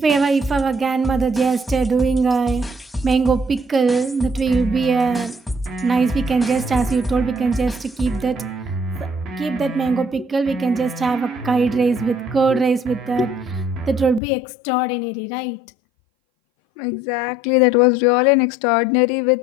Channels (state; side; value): drops out; right; at 14.2 s